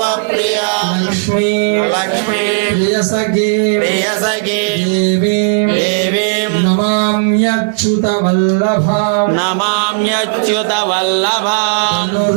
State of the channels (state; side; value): silent; left; digital silence